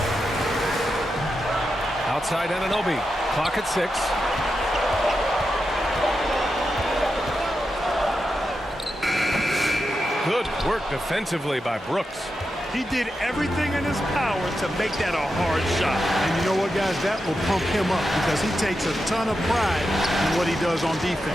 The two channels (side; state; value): both; normal; correlation 0.88